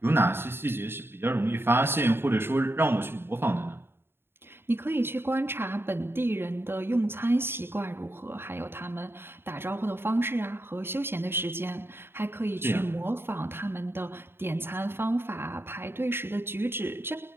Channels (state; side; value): late; left; 0.11 ms